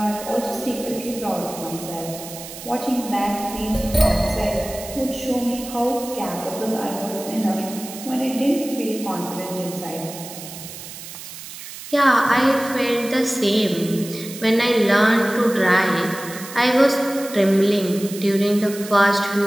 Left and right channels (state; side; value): noise; right; hiss, 12 dB below the sound